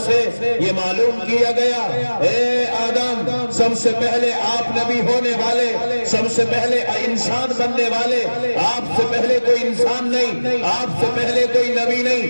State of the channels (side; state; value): both; inverted; correlation -1.00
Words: سے یہ معلوم کیا گیا، اے آدم، سب سے پہلے آپ نبی ہونے والے، سب سے پہلے انسان بننے والے، آپ سے پہلے کوئی انسان نہیں، آپ سے پہلے کوئی نبی